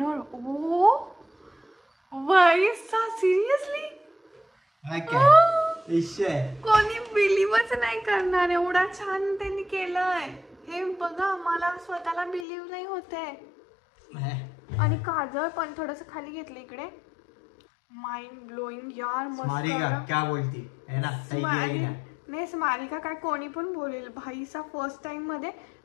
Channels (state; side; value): drops out; right; at 12.5 s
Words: ओ वाईसा सिरियसली कोणी बिलीव्हच नाही करणार. एवढा छान त्यांनी केलंय. हे बघा मला स्वतःला बिलीव्ह नाही होते. आणि काजळ पण थोडस खाली घेतलं इकडे. माइंड ब्लोईंग यार. मस्त. क्या बोलती है ना. सही किया की नाही? नाही स्मारिका काय कोणी पण बोलेल भाईचा फर्स्ट टाइम मध्ये.